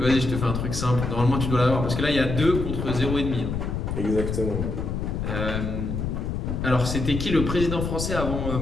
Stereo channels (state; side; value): noise; left; rumble, 3 dB below the sound